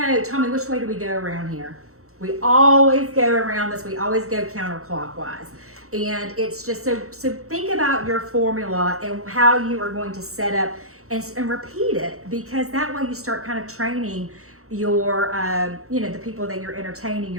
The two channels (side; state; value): left; late; 0.64 ms